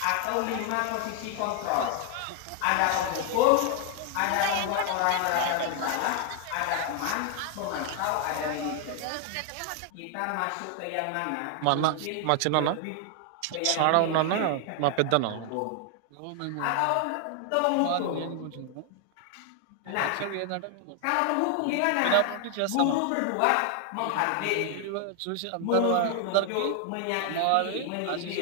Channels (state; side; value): different; both; correlation 0.00